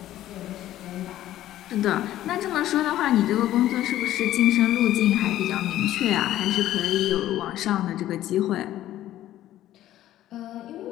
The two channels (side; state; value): right; quieter; 13.5 dB